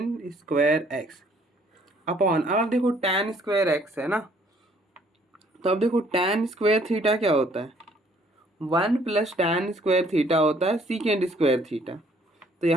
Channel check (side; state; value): both; normal; correlation 0.61